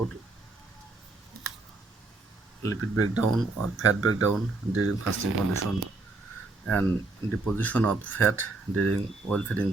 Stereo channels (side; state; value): left; quieter; 3.4 dB